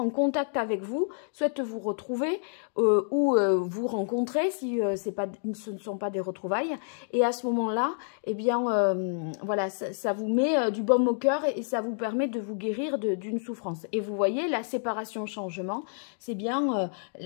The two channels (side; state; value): right; silent; digital silence